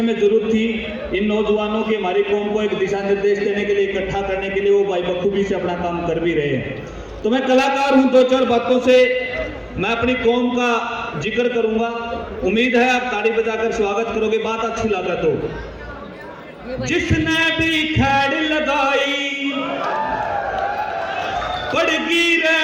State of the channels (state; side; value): identical; both; correlation 1.00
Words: में जरूरत थी इन नौजवानों की, हमारी कौम को एक दिशा निर्देश देने के लिए, इकट्ठा करने के लिए, वो भाई बखूबी से अपना काम कर भी रहे हैं। तो मैं कलाकार हूं, दो चार बातों से मैं अपनी कौम का जिक्र करूंगा। उम्मीद है आप ताड़ी बजाकर स्वागत करोगे, बात अच्छी लगा तो। जिसने भी खैड़ लगाई पड़गी रे